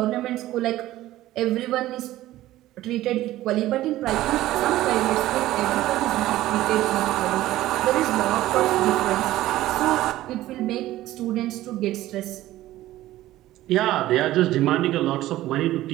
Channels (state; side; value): quieter; left; 15.3 dB